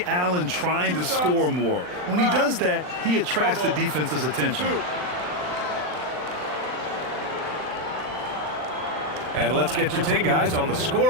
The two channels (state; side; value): late; left; 39 ms